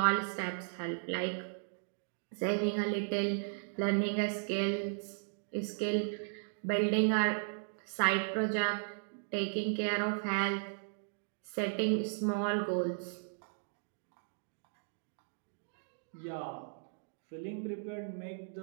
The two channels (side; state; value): left; silent; digital silence